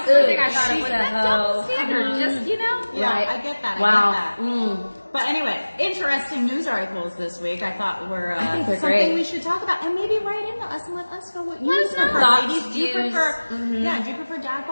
the thing I thought She's of. Was a that double hoe. standard? Just, you know? Yeah, Right. I get that. Wow. I get that. But anyway, interesting news articles this week. I thought were think they're something great. we should talk about, and maybe write into us and let us know what you Let us know. prefer. Thoughts, Ladies, do you views. prefer? Yeah, do you prefer dad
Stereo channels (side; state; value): both; inverted; correlation -1.00